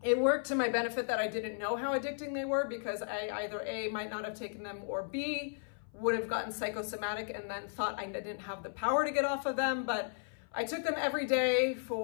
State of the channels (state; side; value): silent; right; 55 dB below the other